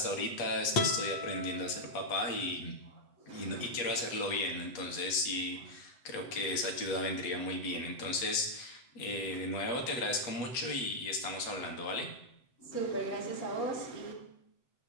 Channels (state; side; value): late; right; 8.0 ms